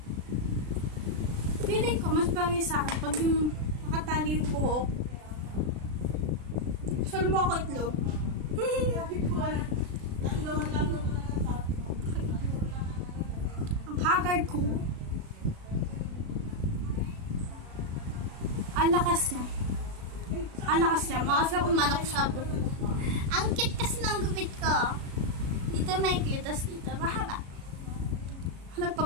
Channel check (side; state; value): left; late; 36 ms